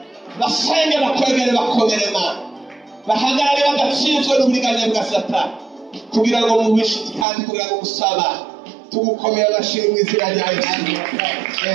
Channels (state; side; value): drops out; left; at 7.2 s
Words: basenge bakwegere bakomerema bahagarare badatsinzwe n'uburiganya bwa Satani kugira ngo mubishuti kandi kugira ngo gusaba tugukomera amashimwe izina rya Yesu.